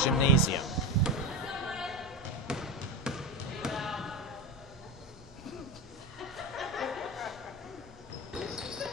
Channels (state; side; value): normal; both; correlation 0.20